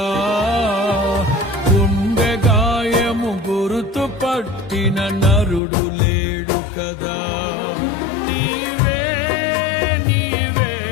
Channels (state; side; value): drops out; right; at 5.6 s